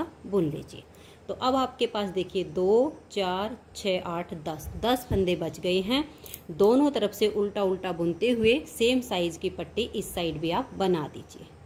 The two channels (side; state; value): both; identical; correlation 1.00